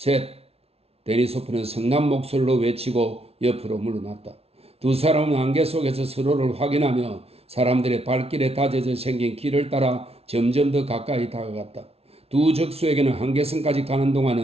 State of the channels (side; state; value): left; late; 0.30 ms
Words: 데니소프는 성난 목소리로 외치고 옆으로 물러났다. 두 사람은 안개 속에서 서로를 확인하며 사람들의 발길에 다져져 생긴 길을 따라 점점 더 가까이 다가갔다. 두 적수에게는 한계선까지 가는 동안